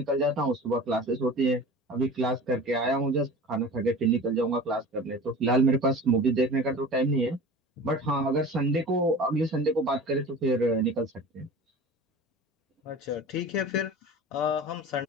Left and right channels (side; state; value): both; normal; correlation 0.37